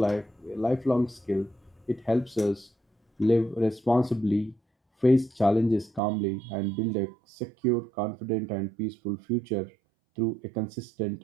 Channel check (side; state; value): left; drops out; at 6.0 s